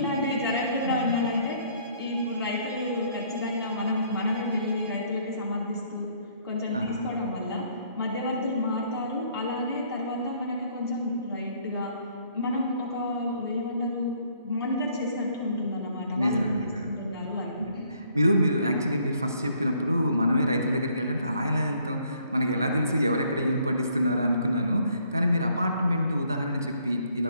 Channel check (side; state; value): both; inverted; correlation -0.64